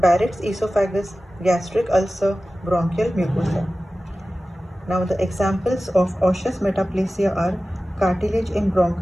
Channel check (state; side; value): normal; both; correlation 0.96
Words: esophagus, gastric ulcer, bronchial mucosa. Now the examples of osseous metaplasia are cartilage in